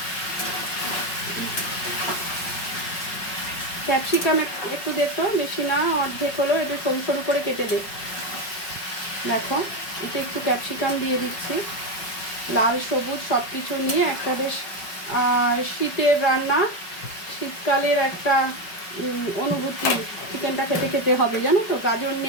ক্যাপসিকাম একটু দে তো, বেশি না, অর্ধেক হলেও একটু সরু সরু করে কেটে দে। দেখো এতে একটু ক্যাপসিকাম দিয়ে দিচ্ছি, লাল সবুজ সব কিছু নিয়ে একটা বেশ শীতের রান্না, শীতকালের একটা অনুভূতি চিকেনটা খেতে খেতে হবে, জানো তো। গাজর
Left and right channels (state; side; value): late; right; 5.3 ms